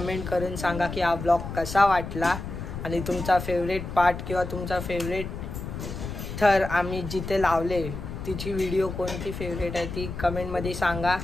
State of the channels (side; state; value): left; noise; rumble, 7 dB below the sound